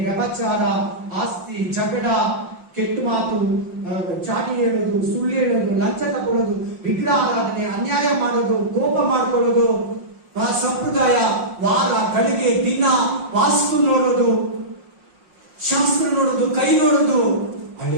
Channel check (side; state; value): left; late; 5.6 ms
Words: ವ್ಯಭಚಾರ, ಆಸ್ತಿ, ಜಗಳ, ಕೆಟ್ಟ ಮಾತು, ಚಾಟಿ ಹೇಳೋದು, ಸುಳ್ಳು ಹೇಳೋದು, ಲಂಚ ತಗೊಳ್ಳೋದು, ವಿಗ್ರಹ ಆರಾಧನೆ, ಅನ್ಯಾಯ ಮಾಡೋದು, ಕೋಪ ಮಾಡ್ಕೊಳ್ಳೋದು, ಸಂಪ್ರದಾಯ, ವಾರ, ಗಳಿಗೆ, ದಿನ, ವಾಸ್ತು ನೋಡೋದು, ಶಾಸ್ತ್ರ ನೋಡೋದು, ಕೈ ನೋಡೋದು,